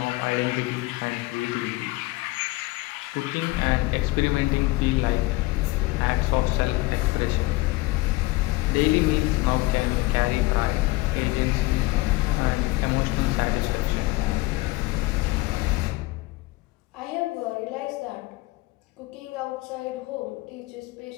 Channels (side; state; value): right; quieter; 21.4 dB